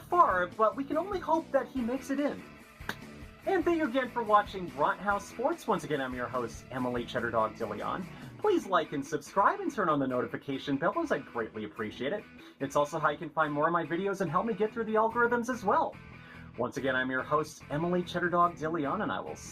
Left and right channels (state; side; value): identical; both; correlation 1.00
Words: but we can only hope that he makes it in. And thank you again for watching Brathouse Sports. Once again, I'm your host, Emily Cheddar Dog DeLeon. Please like and subscribe and turn on the notification bell, as I greatly appreciate it. It's also how you can find more of my videos and help me get through the algorithms as well. Once again, I'm your host, Emily Cheddar Dog DeLeon, and I will